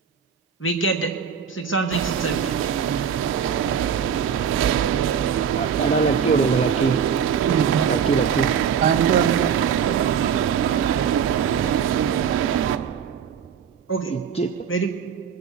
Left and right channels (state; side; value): quieter; left; 7.3 dB